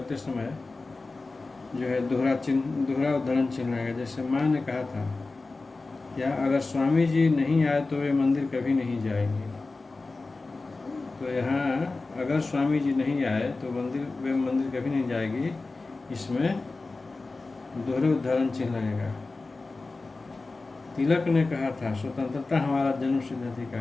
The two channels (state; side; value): quieter; right; 3.6 dB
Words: समय जो है दोहरा उद्धरण चिन्ह लगेगा। जैसे माँ ने कहा था, या अगर स्वामी जी नहीं आए तो वे मंदिर कभी नहीं जाएंगे। तो यहाँ अगर स्वामी जी नहीं आए तो वे मंदिर कभी नहीं जाएगी, इसमें दोहरे उद्धरण चिन्ह लगेगा। तिलक ने कहा था, स्वतंत्रता हमारा जन्मसिद्ध